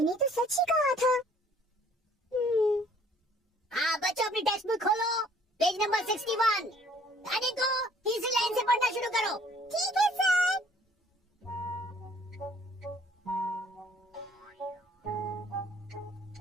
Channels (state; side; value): normal; both; correlation 0.58